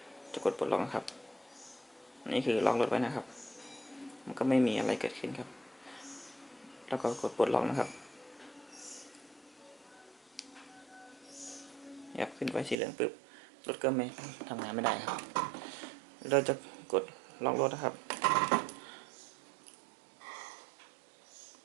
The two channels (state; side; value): drops out; left; at 12.8 s